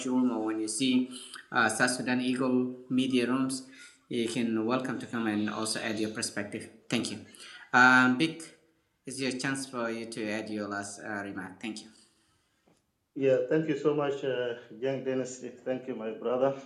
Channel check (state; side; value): identical; both; correlation 1.00